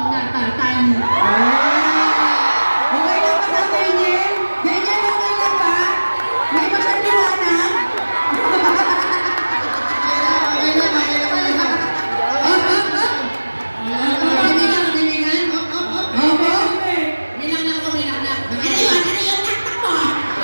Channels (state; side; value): inverted; both; correlation -1.00